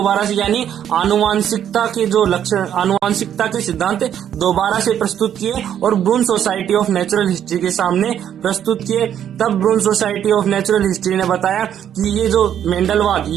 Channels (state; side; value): quieter; left; 9.8 dB